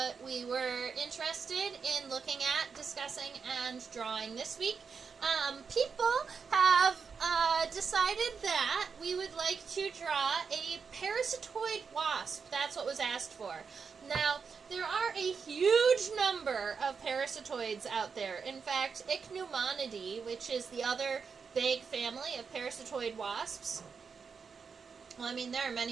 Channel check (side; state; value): left; quieter; 5.7 dB